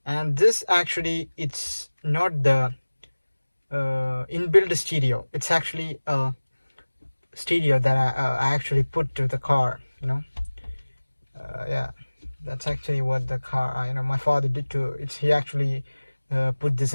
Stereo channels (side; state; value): both; inverted; correlation -1.00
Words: And this actually, it's not the inbuilt stereo. It's actually a stereo that I actually put to the car. Yeah, that's actually what the car, my father did to it. He actually put this